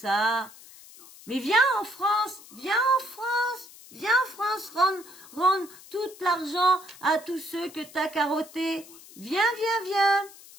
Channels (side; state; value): left; noise; hiss, 20 dB below the sound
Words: Mais viens en France, rendre tout l'argent à tous ceux que t'as carottés. Viens.